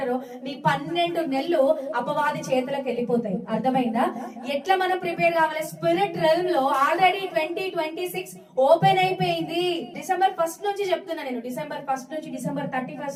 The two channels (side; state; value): both; identical; correlation 1.00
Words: మీ 12 నెలలు అపవాది చేతులకు వెళ్ళిపోతాయి. అర్థమైందా? ఎట్లా మనం ప్రిపేర్ కావాలి? స్పిరిట్ రెల్మ్ లో ఆల్రెడీ 2026 ఓపెన్ అయిపోయింది. డిసెంబర్ 1 నుంచి చెప్తున్నా నేను. డిసెంబర్ 1 నుంచి డిసెంబర్